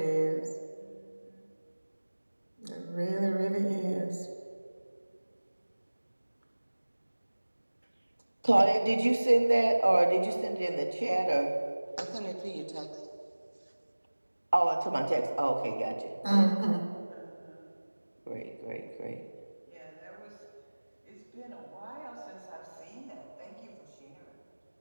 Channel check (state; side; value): inverted; both; correlation -1.00